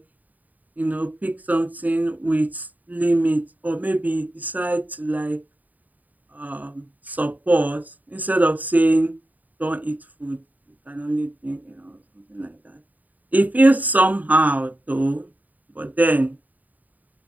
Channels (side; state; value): left; late; 0.080 ms